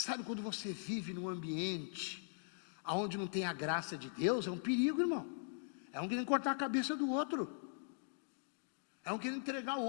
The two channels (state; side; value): silent; right; digital silence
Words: quando você vive num ambiente onde não tem a graça de Deus, é um perigo, irmão. É um querendo cortar a cabeça do outro. É um querendo entregar o